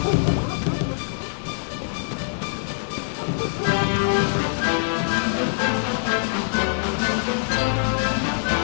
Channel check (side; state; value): right; silent; digital silence